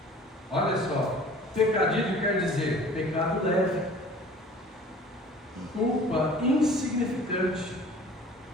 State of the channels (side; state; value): both; normal; correlation 0.47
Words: Olha só, pecadilho quer dizer pecado leve, culpa insignificante.